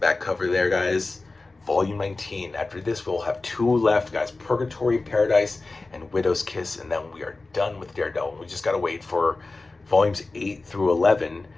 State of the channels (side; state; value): right; quieter; 3.4 dB